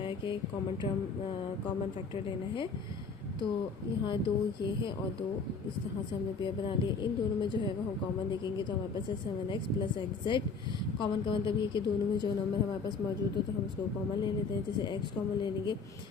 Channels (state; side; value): quieter; right; 4.7 dB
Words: कि कॉमन फैक्टर लेना है। तो यहाँ दो ये है और दो इस तरह से हमने पेयर बना लिए। इन दोनों में जो है वो हम कॉमन देखेंगे तो हमारे पास है 7x प्लस xz। कॉमन का मतलब ये कि दोनों में जो नंबर हमारे पास मौजूद हो तो हम उसको कॉमन ले लेते हैं। जैसे x कॉमन ले लेंगे